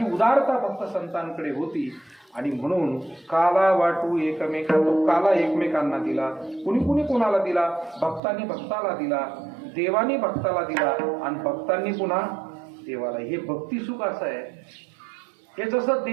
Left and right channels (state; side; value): drops out; left; at 8.2 s